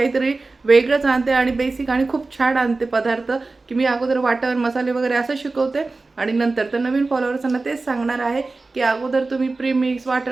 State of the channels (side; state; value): left; quieter; 3.6 dB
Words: वेगळंच आणते आणि बेसिक आणि खूप छान आणते पदार्थ, की मी अगोदर वाटण मसाले वगैरे असं शिकवते आणि नंतर तर नवीन फॉलोअर्सना तेच सांगणार आहे की अगोदर तुम्ही प्रीमिक्स